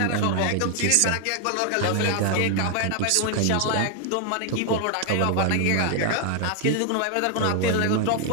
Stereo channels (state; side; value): different; both; correlation 0.00